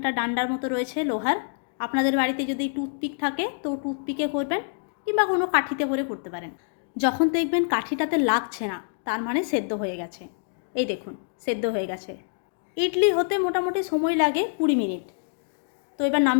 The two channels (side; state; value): right; silent; digital silence